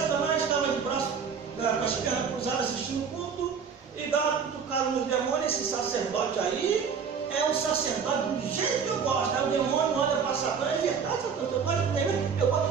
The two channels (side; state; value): left; quieter; 6.4 dB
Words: estava de braço, com as pernas cruzadas assistindo o culto, e dá uma cutucada nos demônios. Esse sacerdote aí é um sacerdote do jeito que eu gosto. Aí o demônio olha para Satanás, é verdade, Satanás, eu gosto dele,